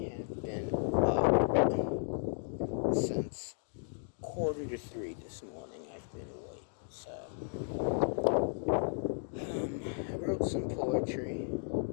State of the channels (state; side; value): silent; right; digital silence